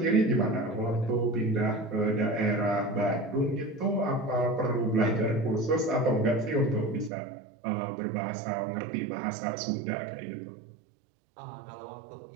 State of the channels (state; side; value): drops out; left; at 7.1 s